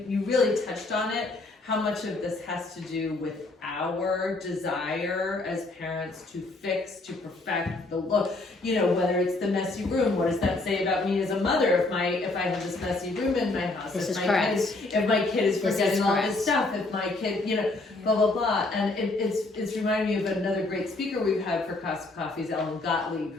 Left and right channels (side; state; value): right; quieter; 3.1 dB